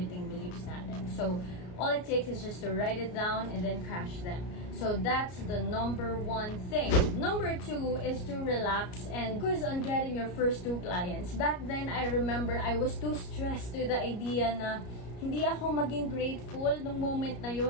beliefs natin. So, all it takes is just to write it down and then crash them. So, that's the number one thing. Number two is to relax and focus on getting your first 2 clients. Back then, I remember I was too stressed to the idea na hindi ako maging grateful nung moment na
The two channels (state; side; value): late; right; 33 ms